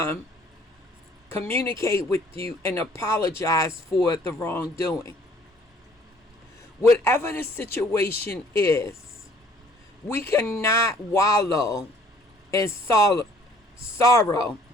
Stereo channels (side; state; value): both; normal; correlation 0.57